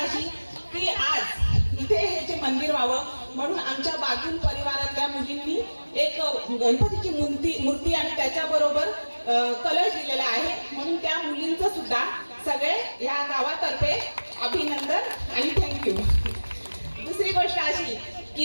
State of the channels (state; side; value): inverted; both; correlation -1.00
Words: की आज इथे हे जे मंदिर व्हावं म्हणून आमच्या बागुल परिवारातल्या मुलींनी एक गणपतीची मूर्ती आणि त्याच्याबरोबर कलश दिलेला आहे. म्हणून त्या मुलींचं सुद्धा सगळे या गावातर्फे अभिनंदन आणि थँक्यू. दुसरी गोष्ट अशी